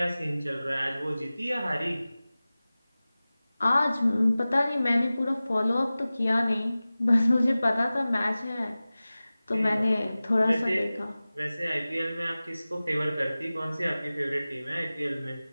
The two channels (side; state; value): both; inverted; correlation -0.97